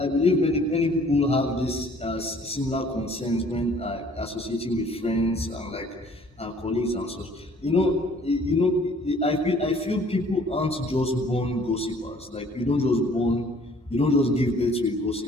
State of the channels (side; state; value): both; normal; correlation 0.56